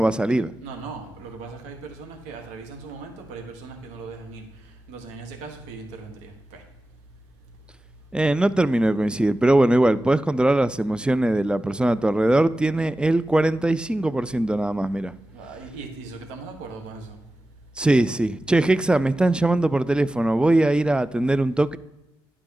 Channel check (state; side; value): normal; both; correlation 0.94